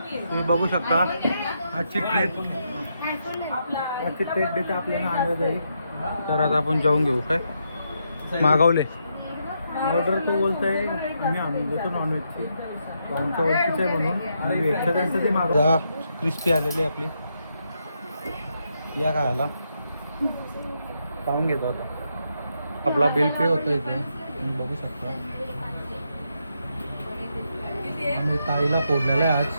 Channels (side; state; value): both; inverted; correlation -0.80